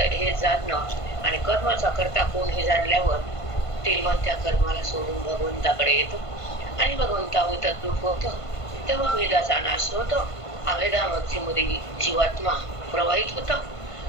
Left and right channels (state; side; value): late; right; 1.5 ms